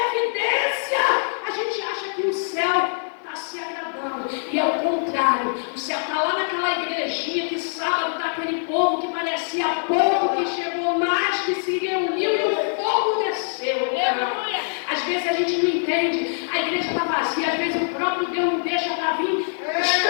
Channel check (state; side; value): silent; right; 61 dB below the other